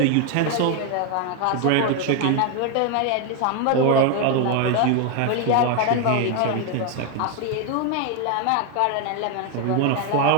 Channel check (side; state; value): both; different; correlation 0.01